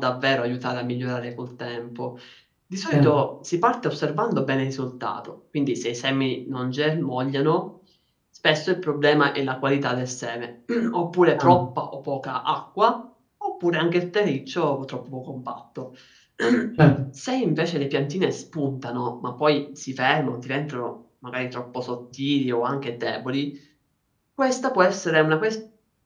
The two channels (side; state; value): both; identical; correlation 1.00